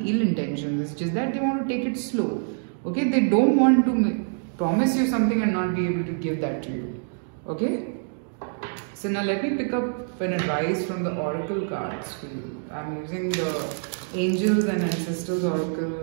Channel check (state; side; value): silent; left; digital silence